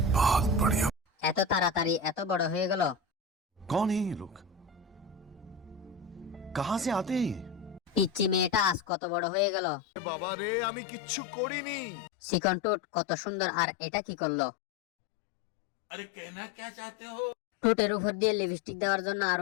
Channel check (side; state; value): right; drops out; at 8.8 s